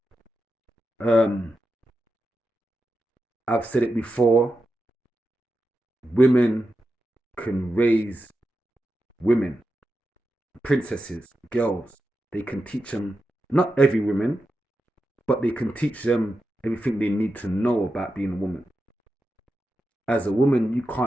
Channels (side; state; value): both; normal; correlation 0.89